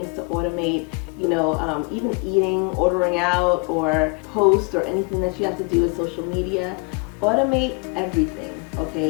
to automate, you know, even eating, ordering out, or post, or anything that you have to do with social media. automate everything,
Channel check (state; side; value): quieter; right; 32.4 dB